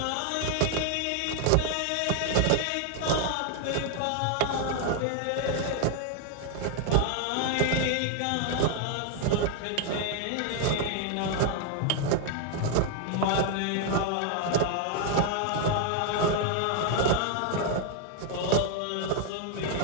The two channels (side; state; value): both; different; correlation 0.00